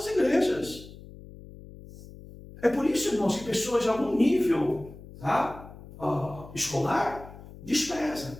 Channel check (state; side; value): noise; left; hum, 17 dB below the sound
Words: igrejas. É por isso, irmãos, que pessoas de algum nível, tá, escolar desprezam